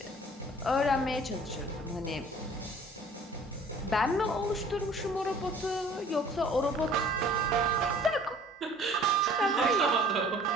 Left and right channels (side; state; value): both; normal; correlation 0.50